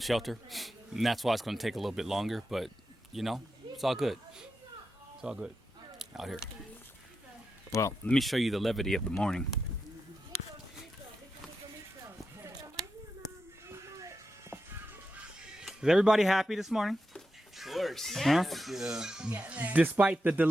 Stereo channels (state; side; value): normal; both; correlation 0.88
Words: Shelter, and that's why it's going to take a little bit longer. But it's all good. It's all good out here. Well, let me show you the levity of the morning. Is everybody happy this morning? Of course. Huh? Yeah. Despite the